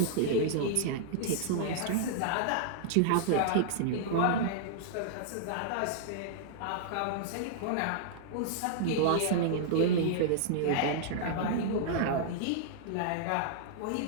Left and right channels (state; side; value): different; both; correlation -0.01